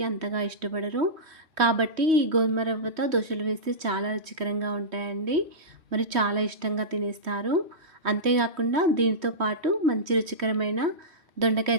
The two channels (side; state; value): left; late; 3.1 ms